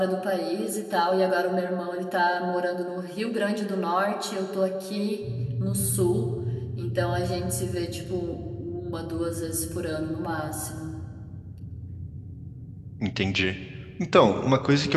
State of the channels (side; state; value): both; identical; correlation 1.00